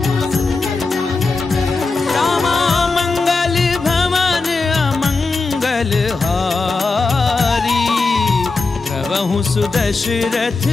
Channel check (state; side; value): quieter; right; 4.0 dB